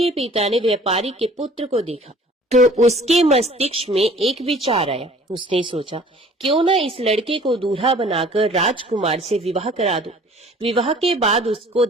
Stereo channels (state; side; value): normal; both; correlation 0.51